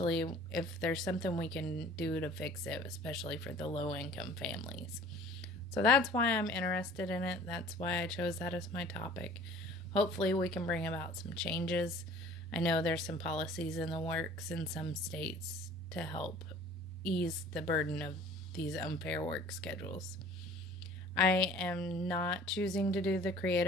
if there's something we can do to fix it, especially for the low income families. So that's why I'm interested in it. That's why I chose that as my topic. Hopefully we can bring about some changes. I know there's some policies in the works in some states to help ease the burden of these unfair work schedules. I am not choosing to do the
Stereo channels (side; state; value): both; normal; correlation 0.48